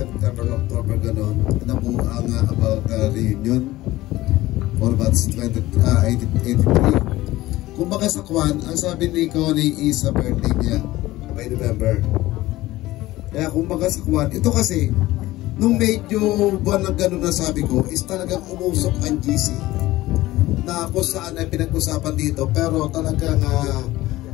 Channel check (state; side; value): quieter; right; 17.2 dB